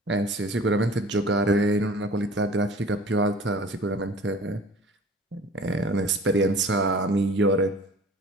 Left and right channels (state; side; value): normal; both; correlation 0.45